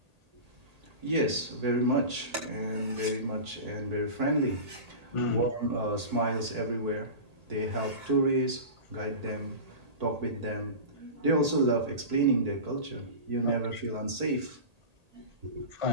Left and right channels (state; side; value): late; left; 1.8 ms